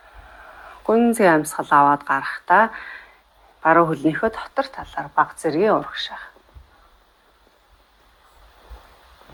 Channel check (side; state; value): both; identical; correlation 1.00